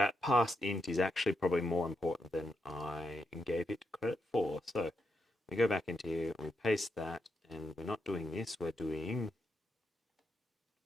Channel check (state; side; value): normal; both; correlation 0.83